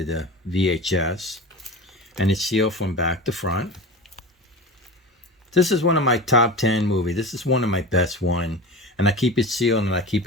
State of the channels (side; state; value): both; normal; correlation 0.30